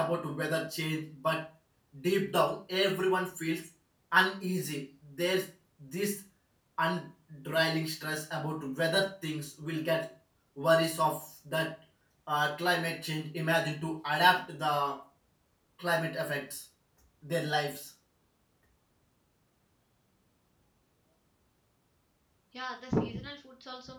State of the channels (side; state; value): both; identical; correlation 1.00